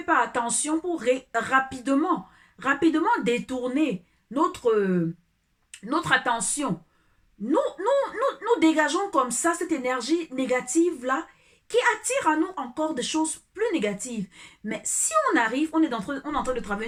pas attention pour rapidement détourner notre attention, nous dégageons comme ça cette énergie négative-là qui attire à nous encore des choses plus négatives. Mais si on arrive, on est en train de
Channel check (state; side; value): identical; both; correlation 1.00